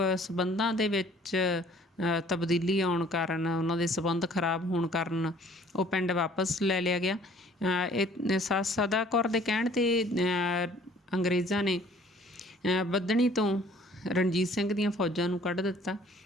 ਸੰਬੰਧਾਂ ਦੇ ਵਿੱਚ ਤਬਦੀਲੀ ਆਉਣ ਕਾਰਨ, ਉਹਨਾਂ ਦੇ ਸੰਬੰਧ ਖਰਾਬ ਹੋਣ ਕਾਰਨ ਉਹ ਪਿੰਡ ਵਾਪਸ ਲੈ ਲਿਆ ਗਿਆ। ਇਹ ਸੱਸ ਸਦਾ ਕੌਰ ਦੇ ਕਹਿਣ 'ਤੇ ਅੰਗਰੇਜ਼ਾਂ ਨੇ ਬੱਧਨੀ ਤੋਂ ਰਣਜੀਤ ਸਿੰਘ ਦੀਆਂ ਫੌਜਾਂ ਨੂੰ ਕੱਢ ਦਿੱਤਾ,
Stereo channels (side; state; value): both; normal; correlation 0.55